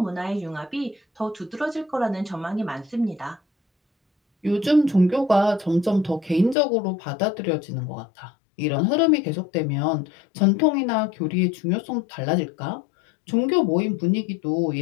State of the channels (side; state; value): right; drops out; at 6.6 s